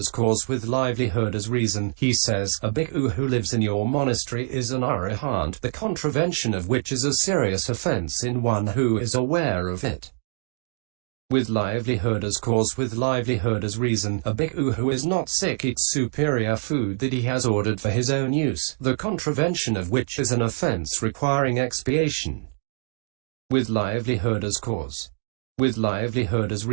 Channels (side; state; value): left; silent; digital silence